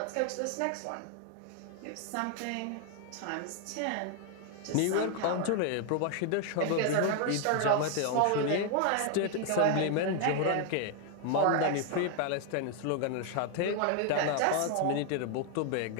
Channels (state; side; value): different; both; correlation 0.00